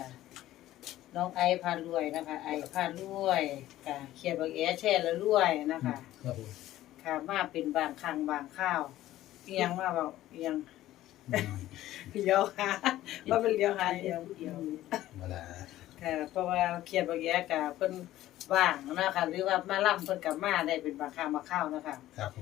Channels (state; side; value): quieter; right; 14.5 dB